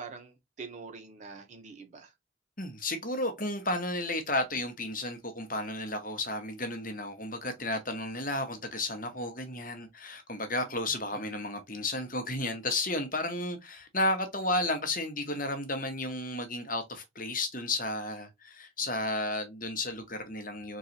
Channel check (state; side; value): normal; both; correlation -0.09